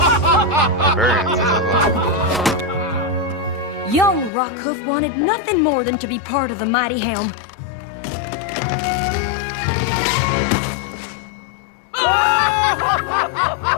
Barbarians. Young Rockhoof wanted nothing more than to be part of the Mighty Helm.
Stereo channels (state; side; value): drops out; right; at 4.3 s